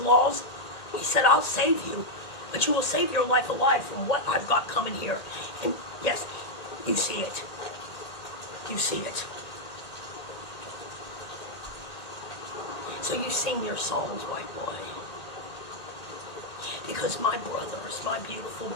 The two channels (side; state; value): right; late; 1.9 ms